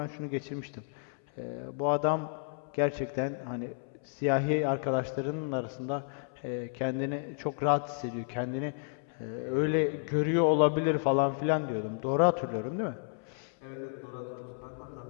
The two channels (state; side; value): silent; right; 57 dB below the other